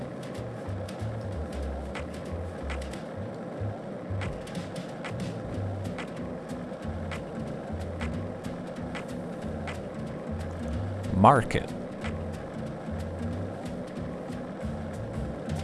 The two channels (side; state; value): both; identical; correlation 1.00